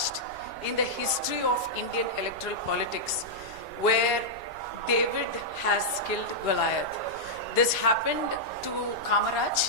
in the history of Indian electoral politics, where David has killed Goliath. This happened to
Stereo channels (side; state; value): right; noise; rumble, 20 dB below the sound